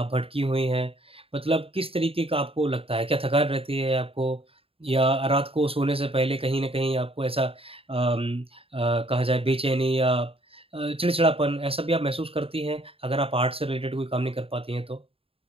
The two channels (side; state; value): left; late; 0.27 ms